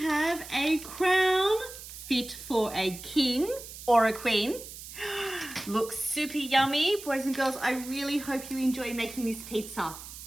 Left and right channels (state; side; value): noise; right; hiss, 13 dB below the sound